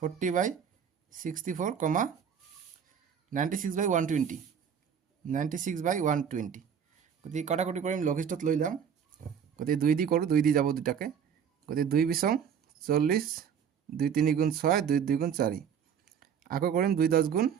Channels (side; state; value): left; quieter; 7.7 dB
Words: কমা 96/120 96/120 গতিকে কটাকটি কৰিম লঘিষ্ঠত লৈ যাম গতিকে 2 দি কৰোঁ 2 দি যাব দুটাকে গতিকে 2 বিছং 40 2 3 গুণ 6 2 2 গুণ 4 আকৌ কৰিম 2 10 গুণ